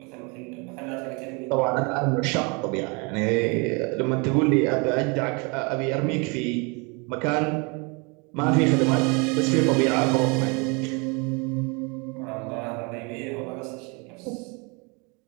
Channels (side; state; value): left; quieter; 31.0 dB